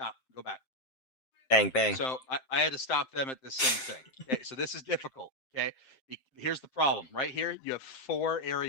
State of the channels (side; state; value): right; late; 7.6 ms